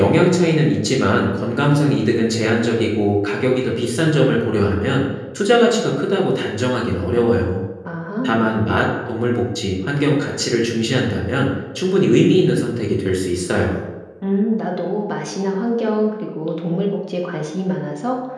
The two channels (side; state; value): both; identical; correlation 1.00